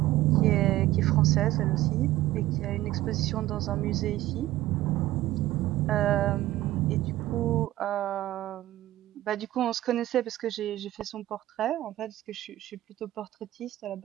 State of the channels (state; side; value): quieter; left; 15.5 dB